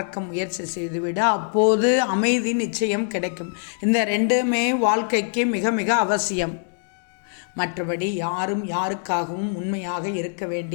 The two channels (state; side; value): silent; right; digital silence